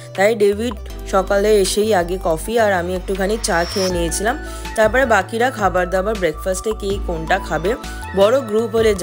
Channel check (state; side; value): identical; both; correlation 1.00